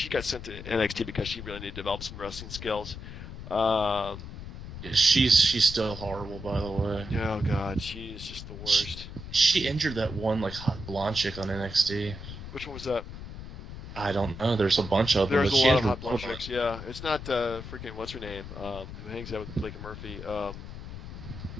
got sent to NXT because she really needed to develop some wrestling skills. Um, Yeah, she's still horrible, by the way. oh God, she is just the worst. She injured that one like hot blonde chick on NXT. Which one was that? I don't know. There's a bunch of them. There's But a she lot of injured hot one blonde of them. chicks. Yeah, it's not freaking what's her name? Who hangs out with Blake and Murphy? I'm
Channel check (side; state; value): left; noise; rumble, 11 dB below the sound